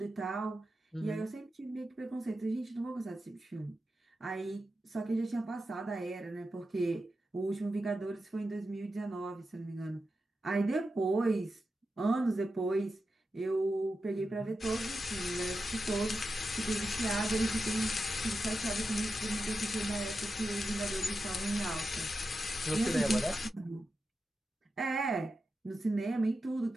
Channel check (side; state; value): both; normal; correlation 0.90